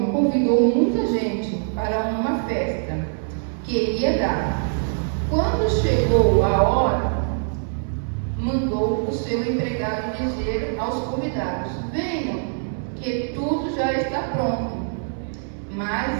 convidou muita gente para uma festa que ia dar. Quando chegou a hora, mandou o seu empregado dizer aos convidados: Venham, que tudo já está pronto.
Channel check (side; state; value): left; silent; 63 dB below the other